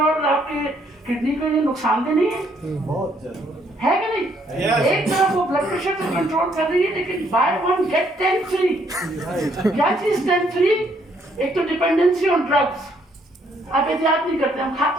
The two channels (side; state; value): both; normal; correlation 0.69